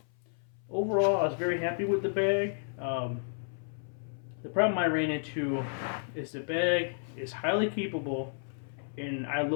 Overall, I was very happy with the bag. The problem I ran into is the bag is highly capable, and I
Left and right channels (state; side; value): silent; right; 56 dB below the other